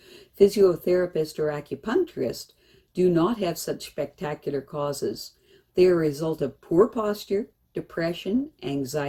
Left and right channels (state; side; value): identical; both; correlation 1.00